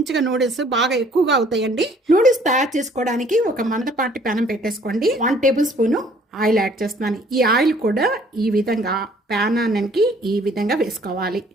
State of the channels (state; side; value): normal; both; correlation 0.58